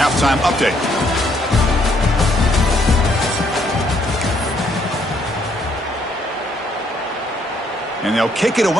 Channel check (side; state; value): both; normal; correlation 0.69